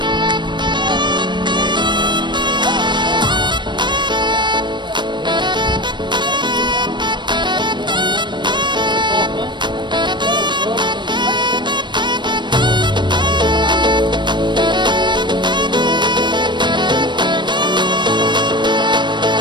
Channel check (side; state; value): left; late; 0.22 ms